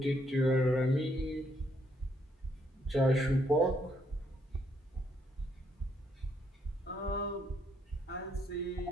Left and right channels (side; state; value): both; normal; correlation 0.72